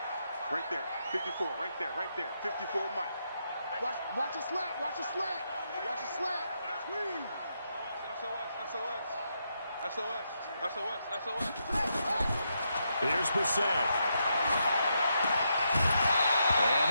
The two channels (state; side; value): inverted; both; correlation -0.81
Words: Right there, 54, right there, 54, Mike. Watch a slant, watch a slant, watch a slant. Squeeze. SOS. Here's Brissett. And